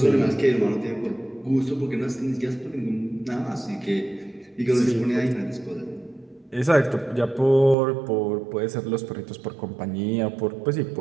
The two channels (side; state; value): left; drops out; at 7.8 s